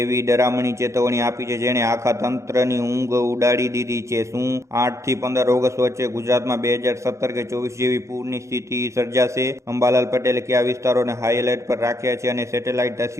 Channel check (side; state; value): left; late; 0.14 ms